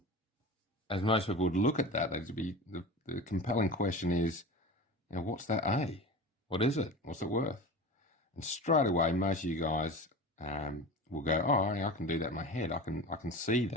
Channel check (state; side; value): normal; both; correlation 0.32